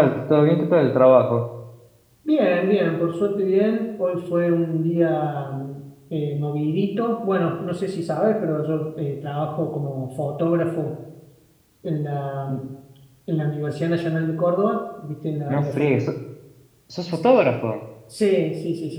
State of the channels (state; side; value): identical; both; correlation 1.00